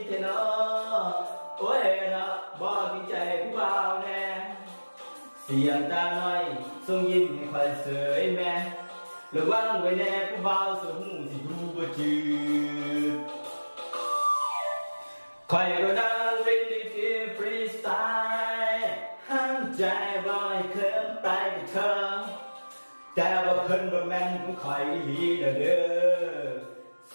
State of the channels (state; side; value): inverted; both; correlation -1.00